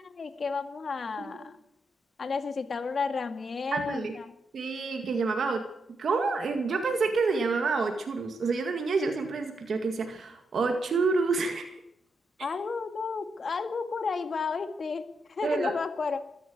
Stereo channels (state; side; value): normal; both; correlation 0.81